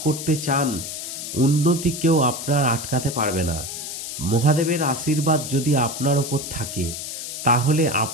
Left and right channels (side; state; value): left; noise; hiss, 7 dB below the sound